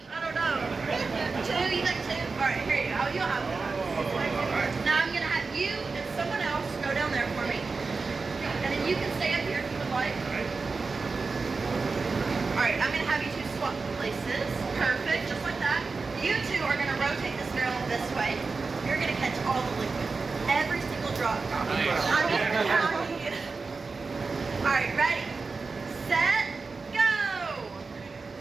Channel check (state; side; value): quieter; left; 4.3 dB